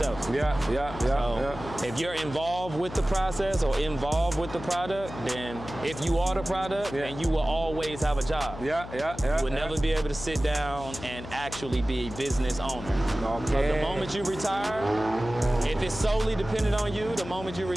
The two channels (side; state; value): left; noise; hum, 12 dB below the sound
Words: So if you're involved with the process or involved with the product, then if you are the product, then you will always have a job. You will never be able to sit down and actually be a business owner. Okay. The moment you retire, if it's solely dependent on you, the moment you